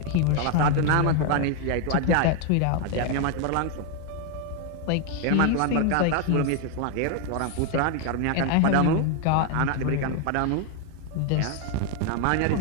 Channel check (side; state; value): both; different; correlation 0.01